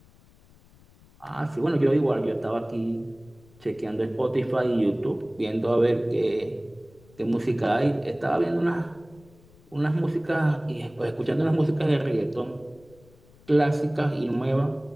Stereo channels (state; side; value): noise; left; rumble, 27 dB below the sound